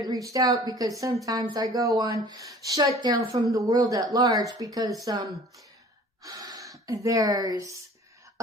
reached out because sometimes I go on shutdown from the world at large, because there's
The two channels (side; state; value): both; normal; correlation 0.48